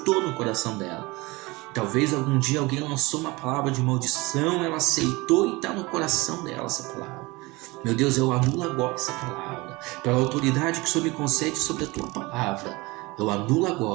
no coração dela. Talvez algum dia alguém lançou uma palavra de maldição, ela aceitou e está no coração dela essa palavra. Meu Deus, eu anulo agora essa palavra. Pela autoridade que o Senhor me concede sobre a Tua palavra, eu anulo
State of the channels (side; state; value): left; quieter; 23.2 dB